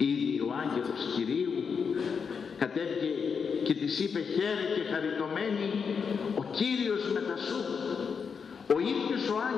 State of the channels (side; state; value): right; quieter; 6.0 dB